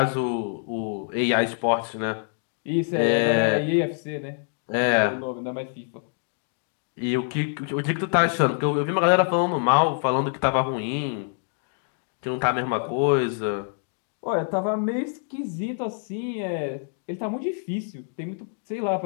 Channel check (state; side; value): silent; right; 61 dB below the other